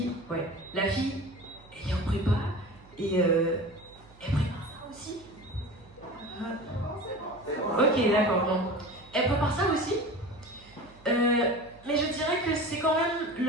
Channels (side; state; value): right; noise; hum, 25 dB below the sound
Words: elle est en prépa et elle prépare ça aussi. Ok, d'accord, bon. Elle prépare ça aussi. Mais je dirais que c'est quand même